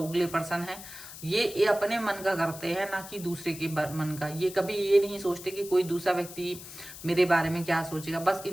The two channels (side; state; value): left; noise; hiss, 14 dB below the sound